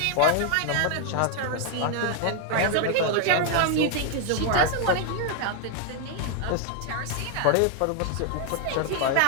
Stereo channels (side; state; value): both; different; correlation 0.00